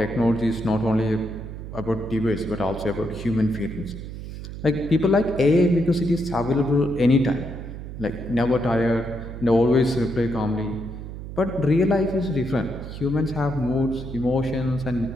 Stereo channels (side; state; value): right; noise; hum, 10 dB below the sound